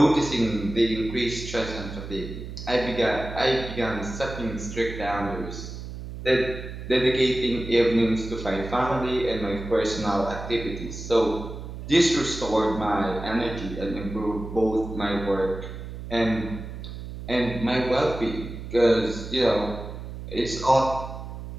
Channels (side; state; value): right; noise; hum, 10 dB below the sound